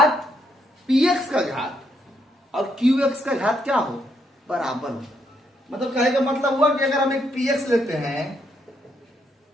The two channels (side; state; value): both; normal; correlation 0.75